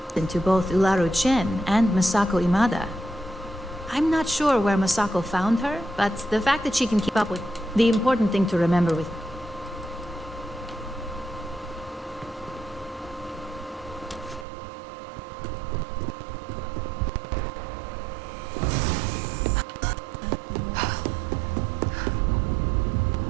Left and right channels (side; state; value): left; drops out; at 14.5 s